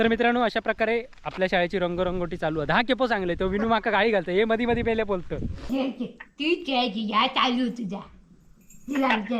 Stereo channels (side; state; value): both; identical; correlation 1.00